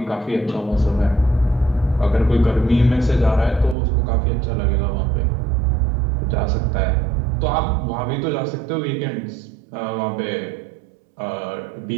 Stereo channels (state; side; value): drops out; left; at 3.8 s